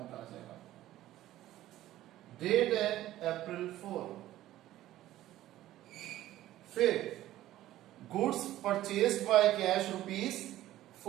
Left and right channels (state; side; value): quieter; left; 14.4 dB